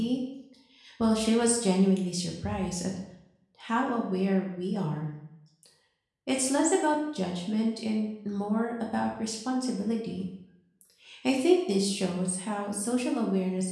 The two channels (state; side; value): identical; both; correlation 1.00